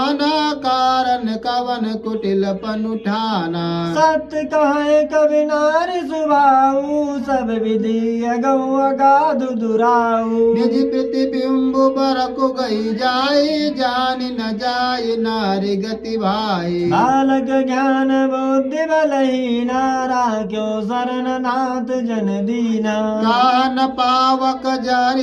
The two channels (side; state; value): both; identical; correlation 1.00